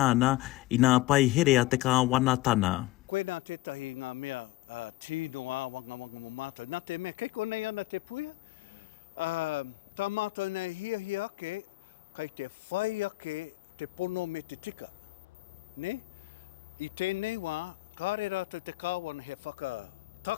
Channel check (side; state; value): right; quieter; 18.8 dB